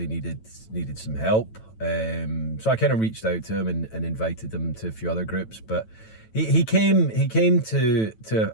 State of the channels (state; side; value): late; right; 9.1 ms